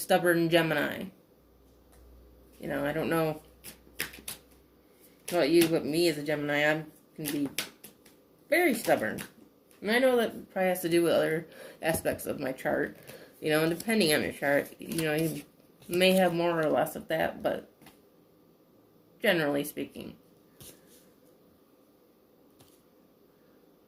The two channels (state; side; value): identical; both; correlation 1.00